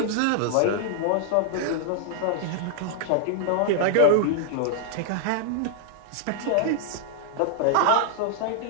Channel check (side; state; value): both; different; correlation -0.01